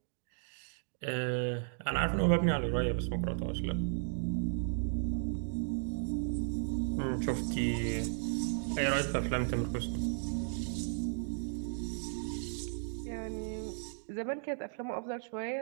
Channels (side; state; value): left; silent; digital silence